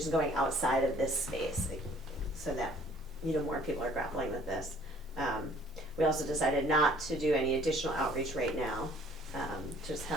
going outside of this space so that, you know, more people are grappling with this. We also decided not to do any additional outreach right now, just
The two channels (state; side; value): normal; both; correlation 0.56